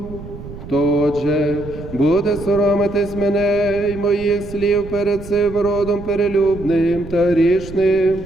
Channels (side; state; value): right; noise; rumble, 13 dB below the sound